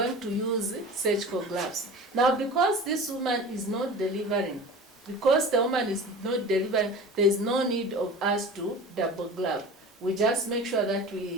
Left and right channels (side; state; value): both; normal; correlation 0.37